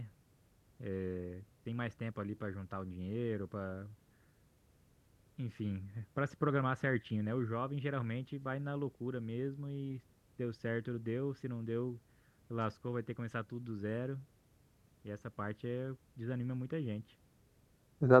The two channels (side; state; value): both; identical; correlation 1.00